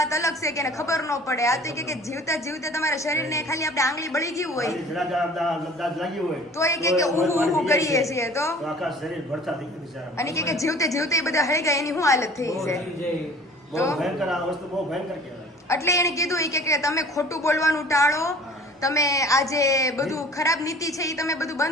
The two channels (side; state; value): both; normal; correlation 0.47